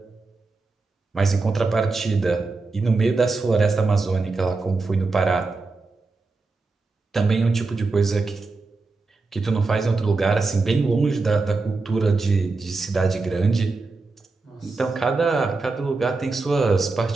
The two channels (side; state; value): left; quieter; 3.8 dB